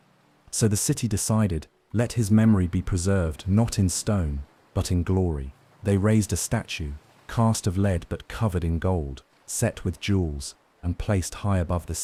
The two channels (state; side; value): identical; both; correlation 1.00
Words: So the city decided, let his memory be preserved not in stone, but in glory. They raised a statue, cast of lead but covered in gold, set with jewels, and placed high above the